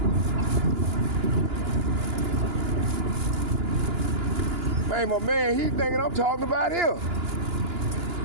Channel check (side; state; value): left; late; 2.9 ms